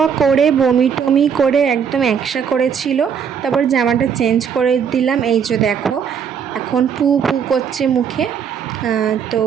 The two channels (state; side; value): quieter; left; 7.3 dB